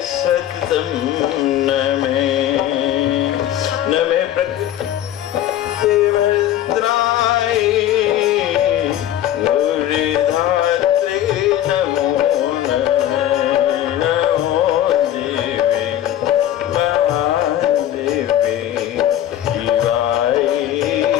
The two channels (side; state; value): right; quieter; 12.0 dB